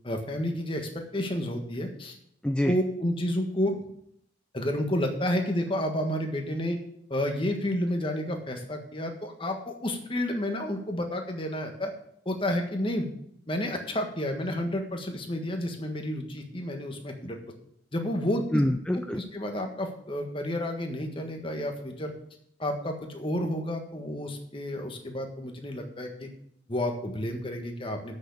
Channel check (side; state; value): both; normal; correlation 0.68